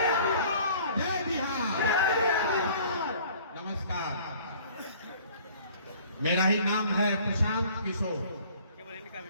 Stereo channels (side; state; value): both; inverted; correlation -0.52